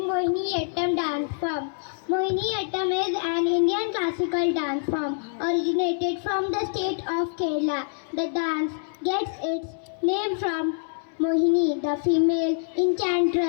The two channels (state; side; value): silent; right; 61 dB below the other